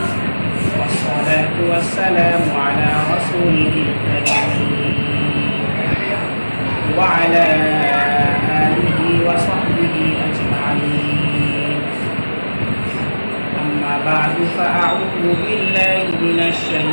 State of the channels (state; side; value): inverted; both; correlation -1.00